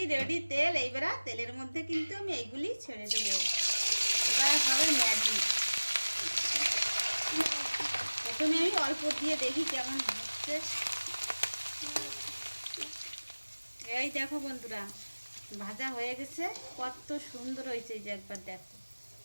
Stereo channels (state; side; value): inverted; both; correlation -1.00